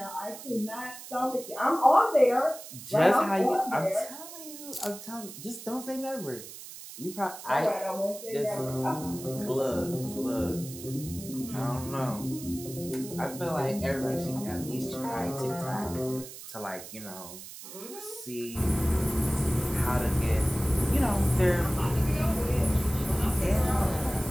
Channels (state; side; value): noise; right; hiss, 13 dB below the sound